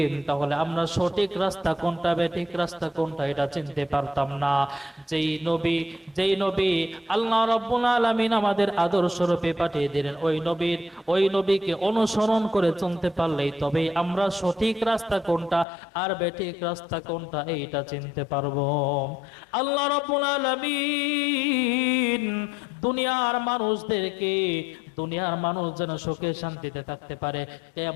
তাহলে আমরা সঠিক রাস্তা কোনটা বেঠিক রাস্তা কোনটা এটা চিনতে পারতাম না। যেই নবী আল্লাহ রাব্বুল আলামিন আমাদের আদর্শ রূপে পাঠিয়ে দিলেন, ওই নবীকে অনুসরণ করে চলতে পারলেই তবেই আমরা সঠিক রাস্তা কোনটা আর বেঠিক রাস্তা কোনটা এইটা চিনতে পারবো। আল্লাহ রাব্বুল আলামিন দুনিয়ার মানুষ যেন সুখে শান্তিতে থাকতে পারে,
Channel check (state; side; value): drops out; right; at 15.7 s